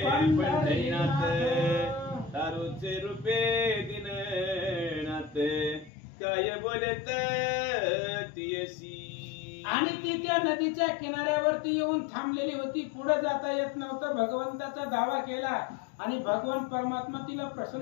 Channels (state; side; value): drops out; right; at 5.9 s